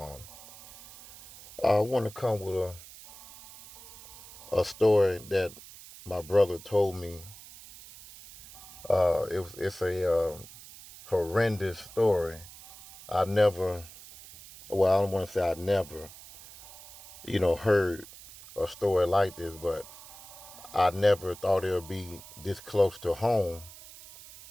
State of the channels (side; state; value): right; noise; hiss, 18 dB below the sound